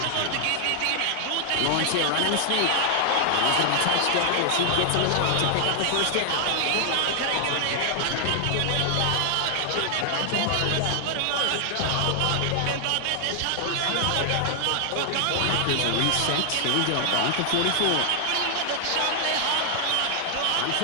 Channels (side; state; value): both; different; correlation 0.00